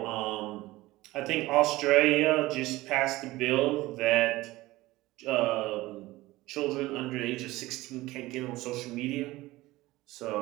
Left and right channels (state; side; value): quieter; left; 18.5 dB